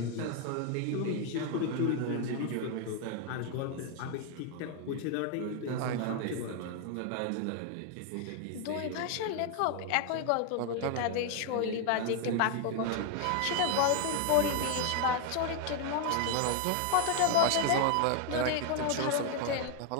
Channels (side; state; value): both; different; correlation 0.00